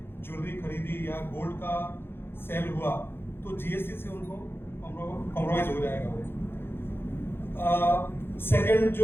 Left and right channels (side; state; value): right; late; 0.11 ms